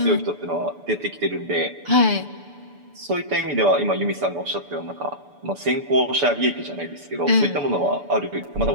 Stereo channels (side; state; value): left; late; 6.9 ms